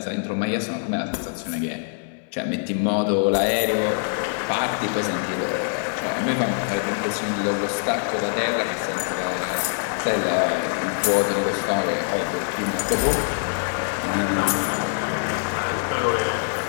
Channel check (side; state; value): right; silent; digital silence